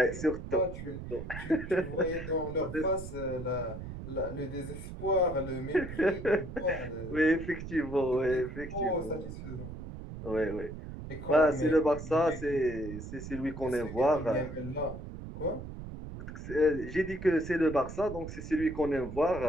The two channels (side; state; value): right; noise; rumble, 10 dB below the sound